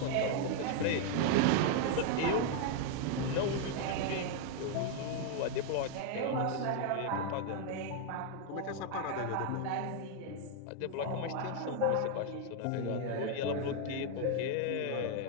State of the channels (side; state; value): both; different; correlation 0.00